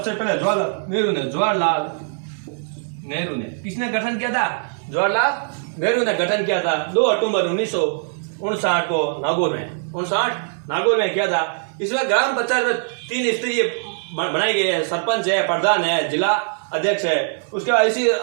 पहले जवाहरलाल नेहरू ने। किसने गठन किया था, जवाहरलाल नेहरू ने गठन किया था 2 अक्टूबर 1959 को नागौर में किया था। इसमें ग्राम पंचायत में 3 स्तरीय बनाए गए हैं, सरपंच है, प्रधान है, जिला अध्यक्ष है। उसके बाद इसी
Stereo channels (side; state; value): left; silent; 65 dB below the other